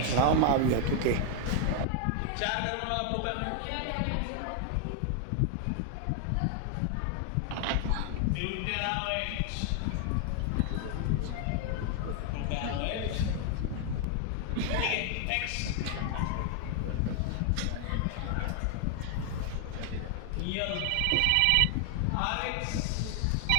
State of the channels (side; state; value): both; different; correlation 0.00